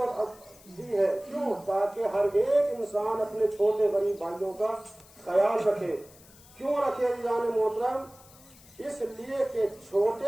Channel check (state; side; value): noise; left; hiss, 24 dB below the sound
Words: دی ہے. کیوں؟ تاکہ ہر ایک انسان اپنے چھوٹے غریب بھائیوں کا خیال رکھے. کیوں رکھے جان محترم؟ اس لیے کہ